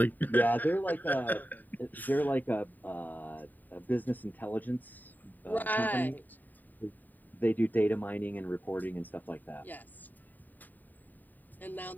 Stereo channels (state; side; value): late; right; 0.087 ms